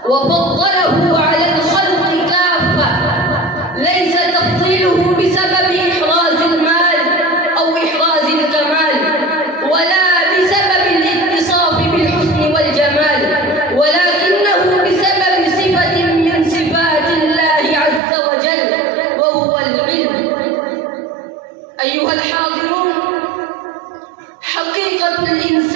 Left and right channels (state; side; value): drops out; left; at 18.0 s